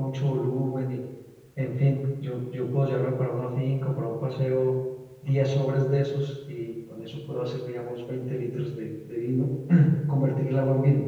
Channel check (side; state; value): both; identical; correlation 1.00